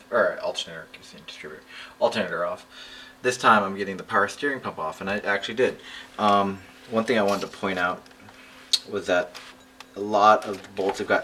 or alternator, keep saying distributor, alternator off. This time I'm getting the power steering pump off, and I actually did. One thing I wanted to point out was that a lot of the bolts I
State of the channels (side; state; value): both; identical; correlation 1.00